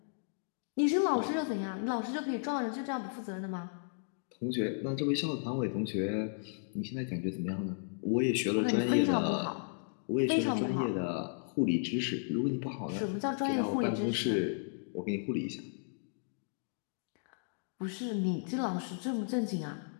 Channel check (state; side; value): silent; right; digital silence